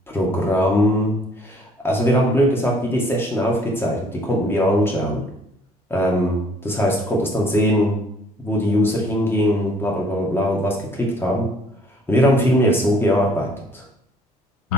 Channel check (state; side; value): normal; both; correlation 0.59